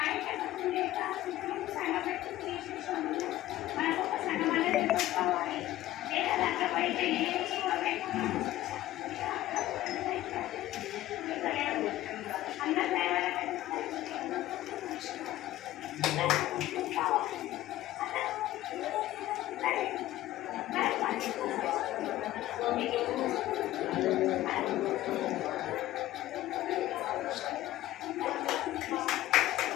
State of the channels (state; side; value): quieter; right; 15.2 dB